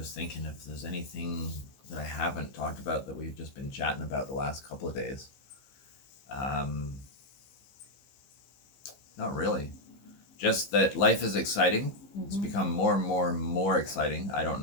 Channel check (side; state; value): right; late; 15 ms